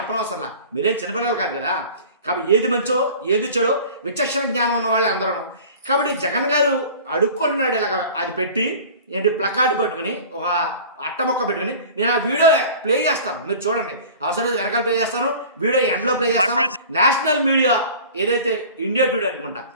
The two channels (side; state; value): both; inverted; correlation -0.41